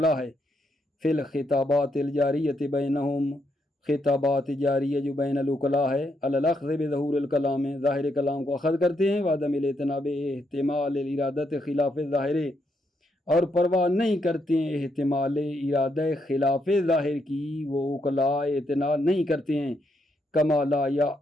ہے. فی الخطابات الجاریۃ بینہم، خطابات جاریہ جو بین العقلاء ہے. علی الاخذ بظہور الکلام، ظاہر کلام کو اخذ کرتے ہیں. وعدم الاعتناب احتمال الارادۃ خلاف ظاہر، اور پرواہ نہیں کرتے ہیں احتمال ارادہ خلاف ظاہر کی. وہ عقلاء اعتنا نہیں کرتے ہیں. کما لا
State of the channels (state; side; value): normal; both; correlation 0.78